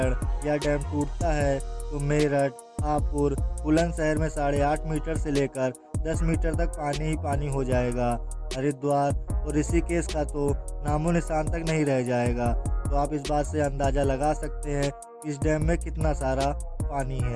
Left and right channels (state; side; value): identical; both; correlation 1.00